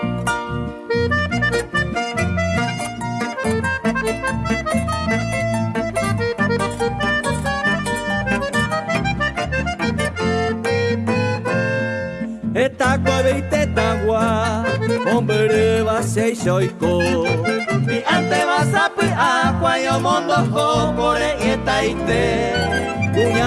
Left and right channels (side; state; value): both; identical; correlation 1.00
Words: Esta cuevita tagua, hombre va se shoiko. Mi ante vas a pi aqua yo mondo ho kore eta ite.